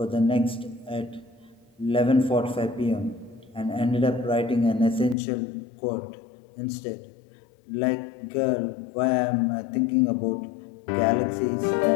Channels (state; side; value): drops out; right; at 5.2 s